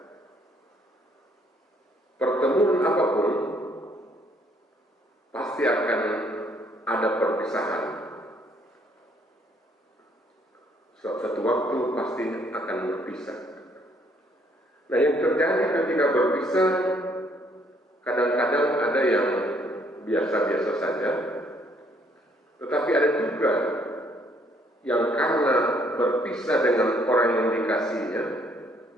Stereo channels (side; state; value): both; normal; correlation 0.66